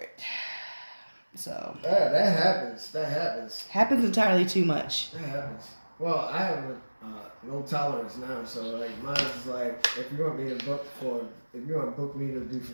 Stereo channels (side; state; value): both; inverted; correlation -1.00